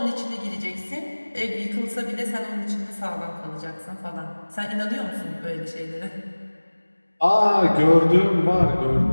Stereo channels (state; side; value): inverted; both; correlation -1.00